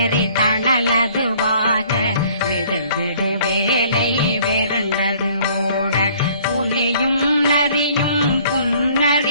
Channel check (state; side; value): inverted; both; correlation -0.56